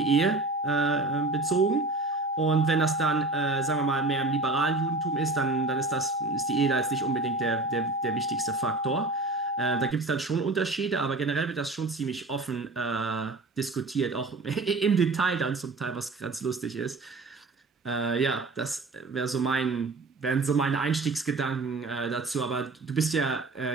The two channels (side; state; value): left; quieter; 3.2 dB